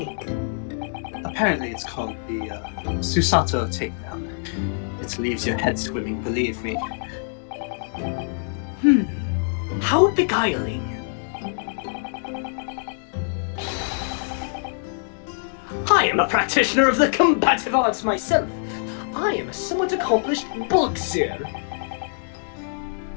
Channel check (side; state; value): right; silent; digital silence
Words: Apparently it's called the Susato takedown. It leaves your head swimming, believe me. How beguiling. I am a practitioner of the combative arts myself. I am a somewhat accomplished boxer.